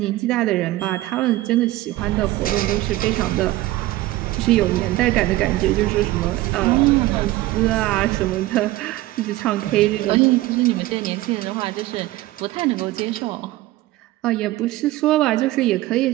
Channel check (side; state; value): left; quieter; 17.3 dB